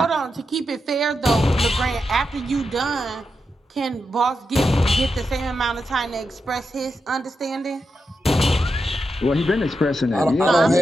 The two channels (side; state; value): both; normal; correlation 0.87